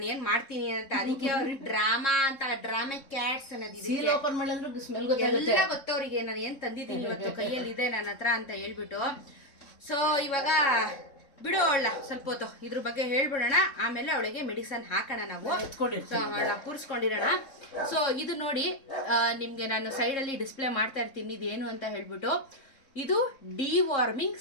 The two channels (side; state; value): right; late; 3.7 ms